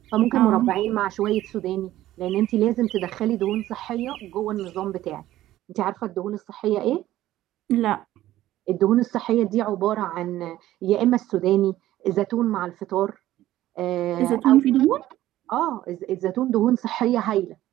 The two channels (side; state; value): left; quieter; 14.4 dB